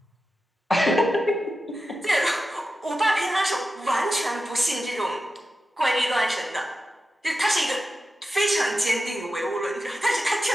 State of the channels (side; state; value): both; normal; correlation 0.92